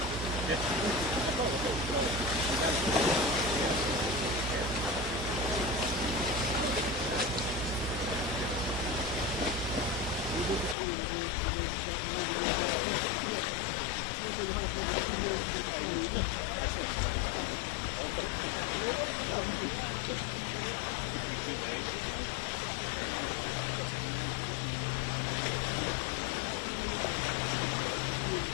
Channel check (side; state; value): right; drops out; at 10.8 s